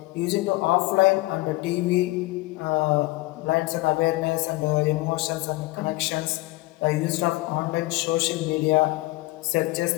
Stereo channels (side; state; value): right; quieter; 20.7 dB